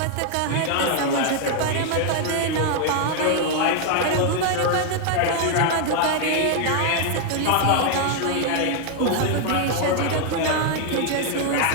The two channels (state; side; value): different; both; correlation 0.00